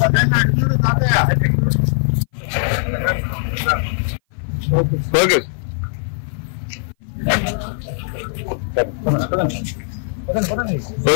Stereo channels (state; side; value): silent; right; 58 dB below the other